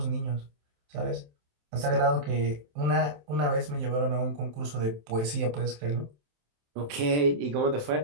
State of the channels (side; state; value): left; late; 27 ms